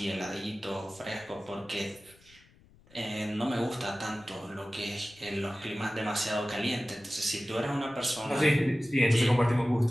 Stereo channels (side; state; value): left; noise; rumble, 28 dB below the sound